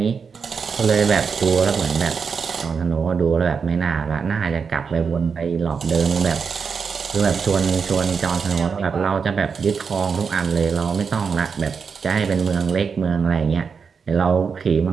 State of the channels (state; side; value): quieter; left; 5.8 dB